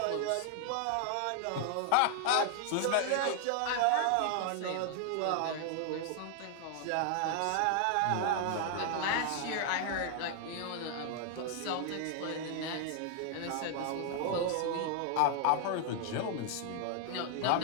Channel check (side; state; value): both; different; correlation 0.00